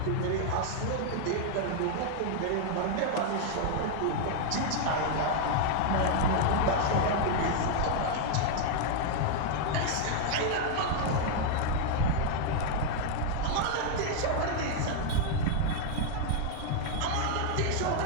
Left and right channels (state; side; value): different; both; correlation 0.00